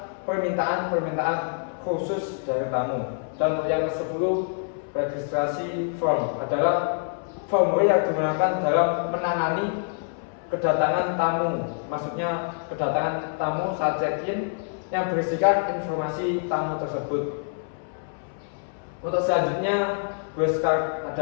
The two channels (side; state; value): right; silent; 61 dB below the other